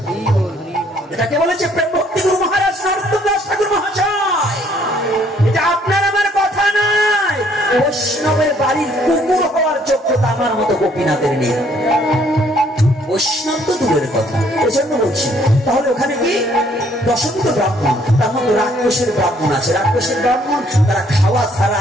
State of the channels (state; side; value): normal; both; correlation 0.64